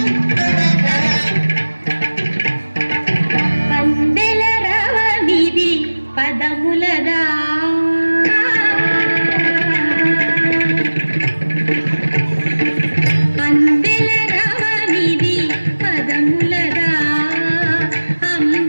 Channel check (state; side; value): inverted; both; correlation -1.00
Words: పదములదా అందెల రవనిది పదములదా